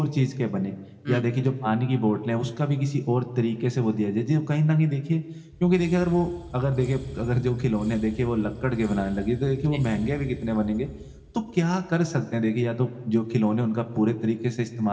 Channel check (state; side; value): identical; both; correlation 1.00